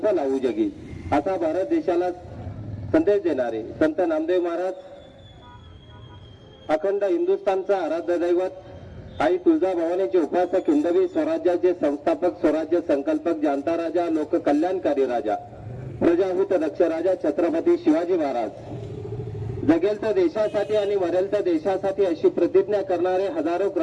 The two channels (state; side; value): identical; both; correlation 1.00